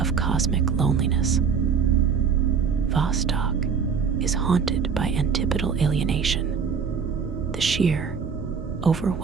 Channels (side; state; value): left; quieter; 6.3 dB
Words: cosmic loneliness. Vostok is haunted by antipodal alienation, the sheer,